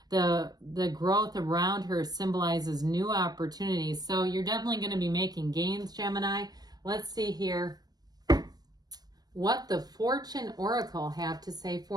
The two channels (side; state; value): left; late; 0.19 ms